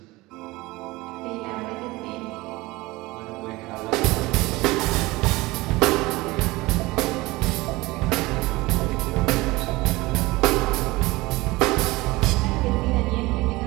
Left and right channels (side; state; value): left; quieter; 21.0 dB